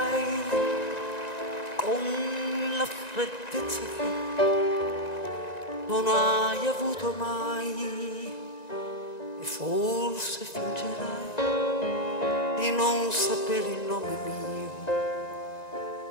con la freddezza che non hai avuto mai, e forse fingerai di non sapere il nome mio.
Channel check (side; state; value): right; late; 1.9 ms